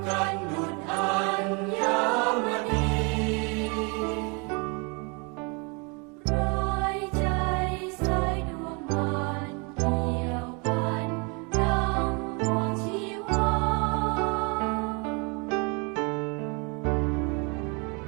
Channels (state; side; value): quieter; left; 32.0 dB